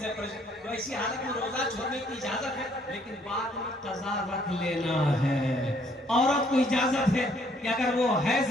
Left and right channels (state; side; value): normal; both; correlation 0.65